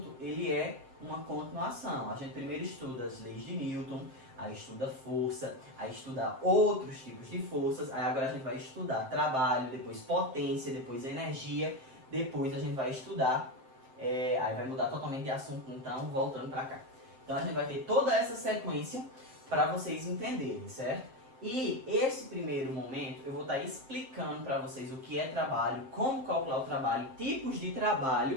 ele é uma continuação. A gente primeiro estuda as leis de Newton, aí estuda força, aí estuda outros tipos de forças, aí agora a gente vai estudar trabalho, depois potência, depois energia. Depois a gente vai estudar, aí vai mudar totalmente de assunto, então, voltando para cá. Então a gente vai ter toda essa sequência para vocês entenderem, certo? E esse primeiro momento eu vou estar explicando para vocês o que é trabalho, como calcular o trabalho, tipos de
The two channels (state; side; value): late; left; 7.7 ms